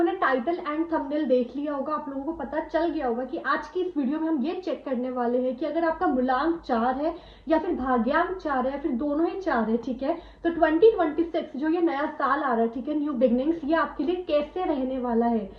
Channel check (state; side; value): identical; both; correlation 1.00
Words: ने टाइटल एंड थंबनेल देख लिया होगा, आप लोगों को पता चल गया होगा कि आज की इस वीडियो में हम ये चेक करने वाले हैं कि अगर आपका मूलांक 4 है या फिर भाग्यांक 4 है या फिर दोनों ही 4 है, ठीक है, तो 2026 जो ये नया साल आ रहा है, ठीक है, न्यू बिगनिंग्स, ये आपके लिए कैसे रहने वाला है।